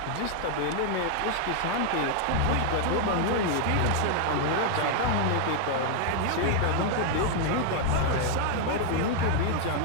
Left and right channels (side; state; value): both; different; correlation 0.00